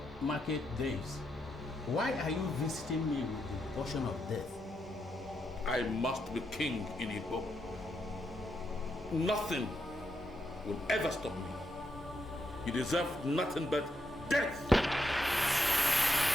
market days. Why are you visiting me with the portion of death? I must be king in Igbo. Nothing will ever stop me. You deserve nothing but death.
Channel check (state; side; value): normal; both; correlation 0.82